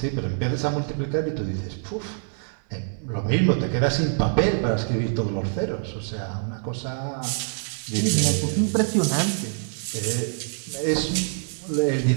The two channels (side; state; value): left; silent; 62 dB below the other